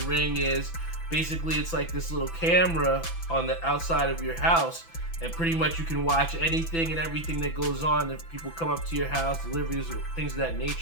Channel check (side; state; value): right; late; 6.0 ms